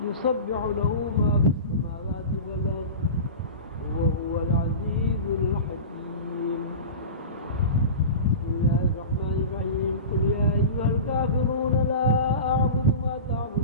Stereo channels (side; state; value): both; inverted; correlation -0.31